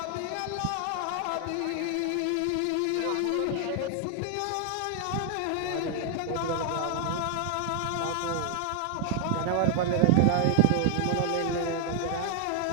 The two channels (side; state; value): both; different; correlation 0.00